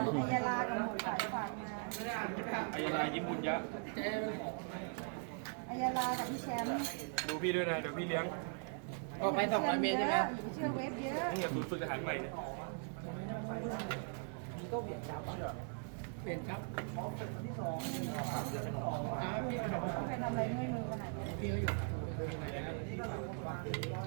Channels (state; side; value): silent; left; 51 dB below the other